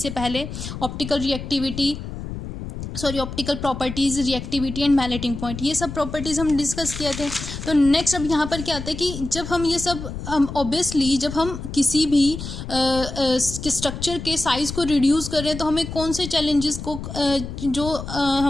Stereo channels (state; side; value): noise; left; rumble, 8 dB below the sound